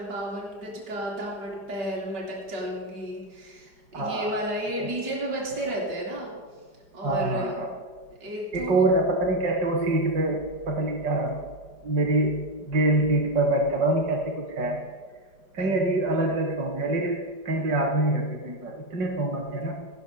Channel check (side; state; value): left; late; 4.9 ms